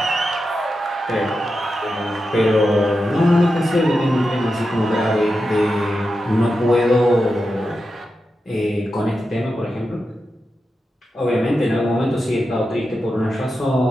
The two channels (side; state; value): both; normal; correlation 0.89